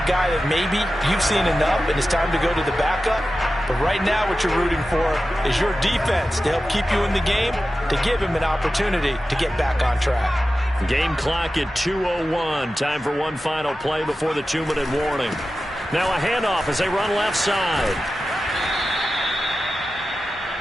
guy that maybe you've seen enough and it's time to go to the backup? But right now what you're rooting for is your defense to help keep you in the game, to give him an opportunity to get back on track. Game clock at 2:01. Time for one final play before the 2-minute warning. Now a handoff as they run left side.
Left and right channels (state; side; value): normal; both; correlation 0.93